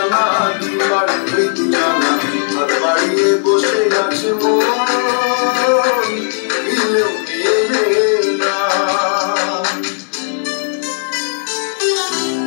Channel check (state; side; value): silent; right; digital silence